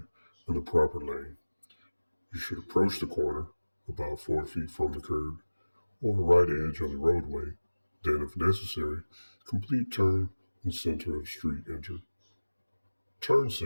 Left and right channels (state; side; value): inverted; both; correlation -1.00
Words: the proper lane. You should approach the corner about 4 feet from the curb or the right edge of the roadway. Then, if necessary, complete turn in center of street enter. Turn